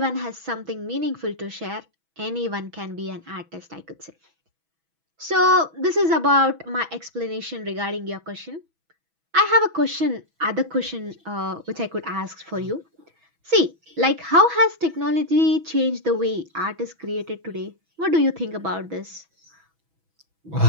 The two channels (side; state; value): left; late; 6.1 ms